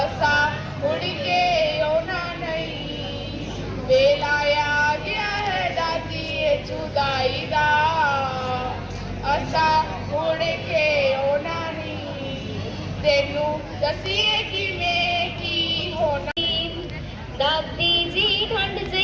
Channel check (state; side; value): identical; both; correlation 1.00